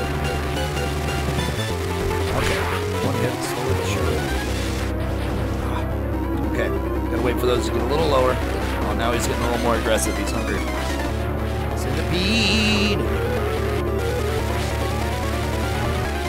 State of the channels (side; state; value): both; identical; correlation 1.00